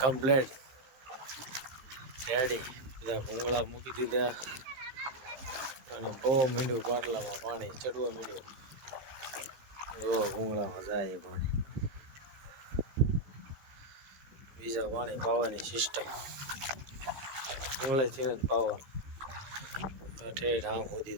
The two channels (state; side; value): late; left; 15 ms